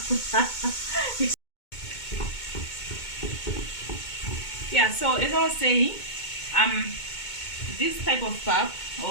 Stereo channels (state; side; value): late; right; 2.2 ms